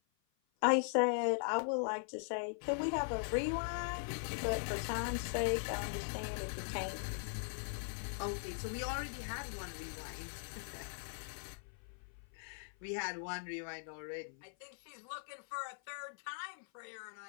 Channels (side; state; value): right; silent; 51 dB below the other